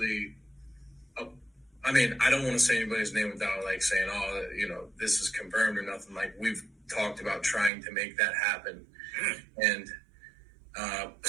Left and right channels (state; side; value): drops out; left; at 7.7 s